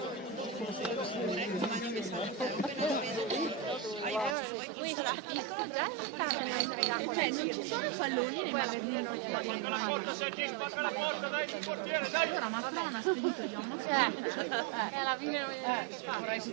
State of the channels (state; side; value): drops out; left; at 4.4 s